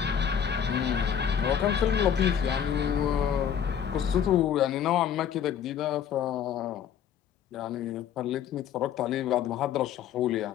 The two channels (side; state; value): right; quieter; 8.6 dB